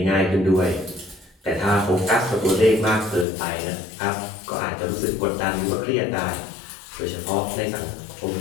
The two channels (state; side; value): drops out; right; at 3.2 s